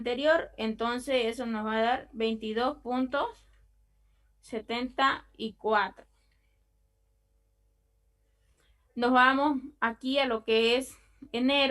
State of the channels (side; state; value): both; identical; correlation 1.00